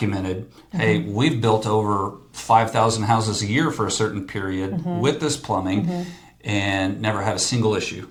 hey, we've built over 5,000 houses a year for a certain period with this plumbing and never had a single issue.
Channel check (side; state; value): both; identical; correlation 1.00